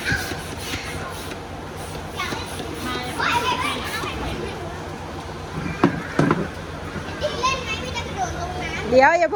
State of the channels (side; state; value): both; identical; correlation 1.00